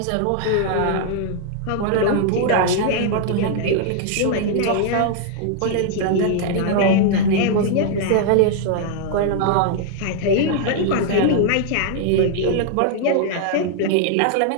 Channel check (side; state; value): both; different; correlation 0.00